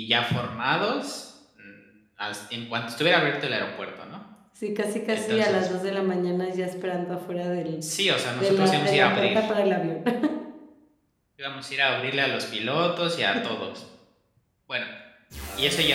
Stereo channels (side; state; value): both; identical; correlation 1.00